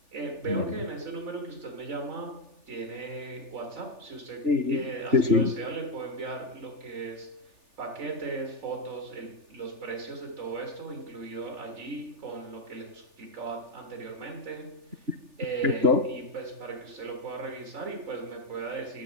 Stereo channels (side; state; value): left; late; 3.4 ms